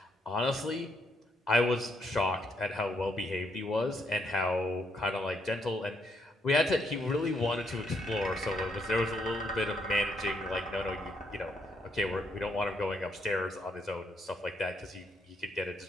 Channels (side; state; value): both; normal; correlation 0.74